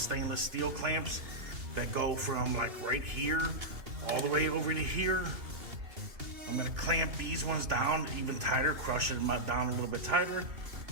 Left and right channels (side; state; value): left; late; 2.8 ms